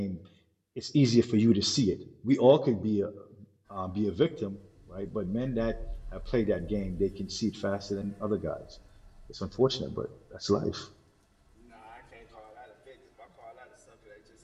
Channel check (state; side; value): identical; both; correlation 1.00